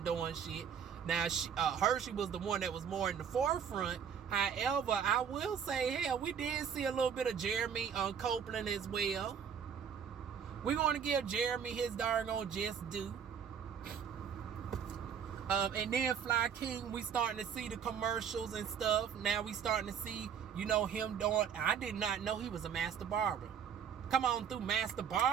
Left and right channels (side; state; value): left; quieter; 7.7 dB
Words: doing shit. Now, Hershey was the one that was more in the forefront. However, I will say, hell, we did see a little bit of Jeremy Copeland as well. We're going to give Jeremy his darn on just due. And then Fly King, we starting to see the commercials and stuff. Now we starting to see, you know, him doing... I did not know he was a master barber. Come on through, master